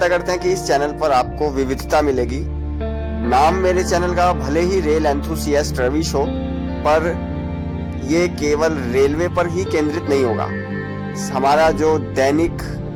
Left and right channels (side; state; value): both; identical; correlation 1.00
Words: करते हैं कि इस चैनल पर आपको विविधता मिलेगी। नाम मेरे चैनल का भले ही रेल एंथुसियास्ट रवि शो, पर ये केवल रेलवे पर ही केंद्रित नहीं होगा। हमारा जो दैनिक